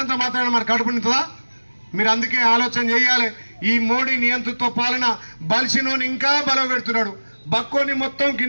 మాత్రాన మరి కడుపు నింటుందా? మీరు అందుకే ఆలోచన చేయాలి. ఈ మోడీ నియంతృత్వ పాలన బలిసినోని ఇంకా బలపెడుతున్నాడు, బక్కోని మొత్తం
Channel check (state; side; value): inverted; both; correlation -1.00